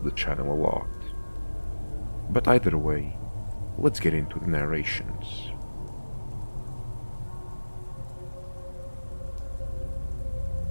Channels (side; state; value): both; inverted; correlation -1.00